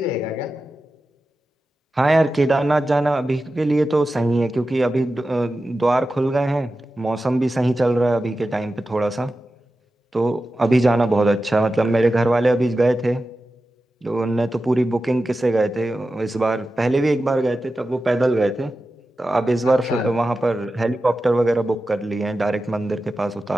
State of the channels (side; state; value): both; normal; correlation 0.93